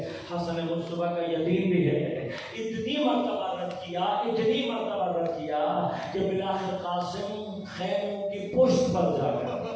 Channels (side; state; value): both; identical; correlation 1.00